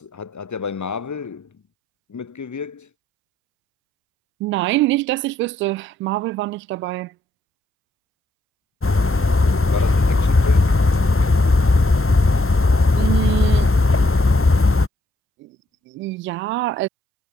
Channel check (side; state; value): both; normal; correlation 0.73